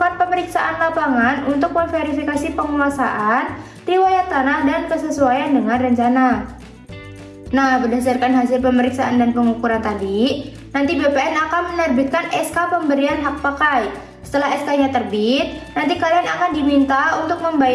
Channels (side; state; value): both; identical; correlation 1.00